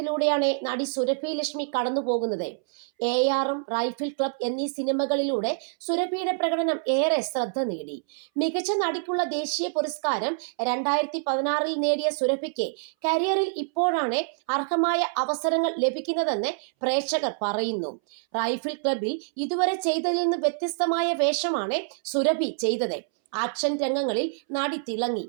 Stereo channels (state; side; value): silent; left; 61 dB below the other